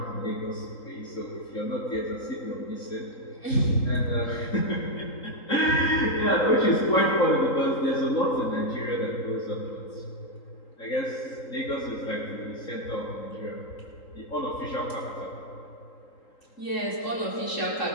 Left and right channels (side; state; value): right; late; 3.8 ms